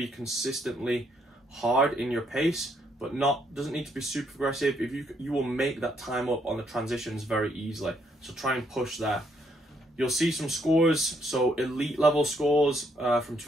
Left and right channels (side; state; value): both; normal; correlation 0.72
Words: consistently hard in your pace, but doesn't need to be super aggressive, if you will make that time up on the transitions very easily. So try and push there. You'll see some scores. So elite level scores from